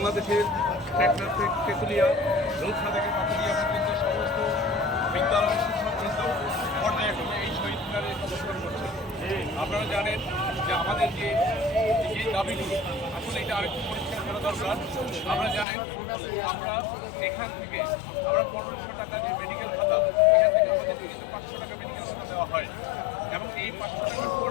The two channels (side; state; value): right; drops out; at 15.7 s